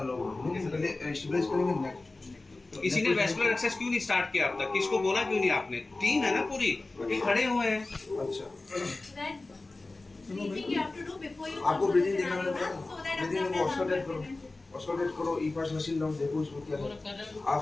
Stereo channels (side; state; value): right; quieter; 3.2 dB